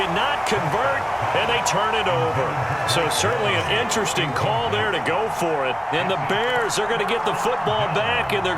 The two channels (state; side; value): identical; both; correlation 1.00